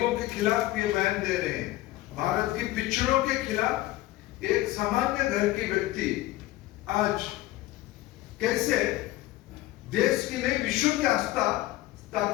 के खिलाफ ये बयान दे रहे हैं, भारत के पिछड़ों के खिलाफ एक सामान्य घर के व्यक्ति आज कैसे देश की नहीं विश्व की आस्था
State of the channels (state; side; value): quieter; right; 17.1 dB